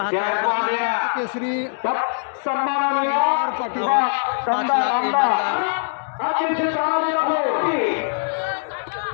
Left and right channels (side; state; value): right; silent; digital silence